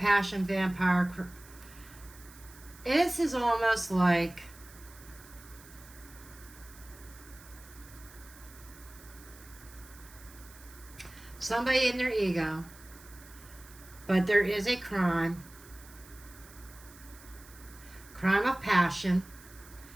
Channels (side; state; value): right; noise; hiss, 21 dB below the sound